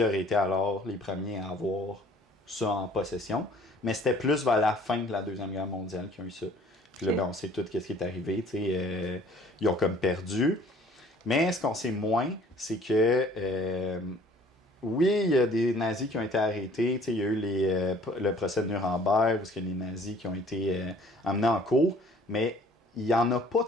auraient été alors les premiers à avoir ça en possession, mais c'était plus vers la fin de la Deuxième Guerre mondiale qu'ils ont eu ça. Puis là, ben, on sait tout ce qui est arrivé, ils ont comme perdu. Mais ce qu'on sait moins, c'est que oui, il y a des nazis qui ont été arrêtés. Il y a eu le procès de Nuremberg, où il y a des nazis qui ont été emmenés en cours, mais il n'y en a pas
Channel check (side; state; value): both; normal; correlation 0.54